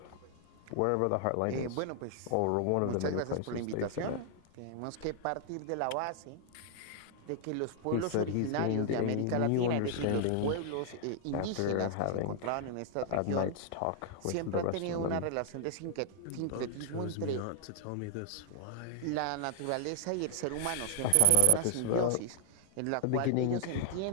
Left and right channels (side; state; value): both; different; correlation 0.00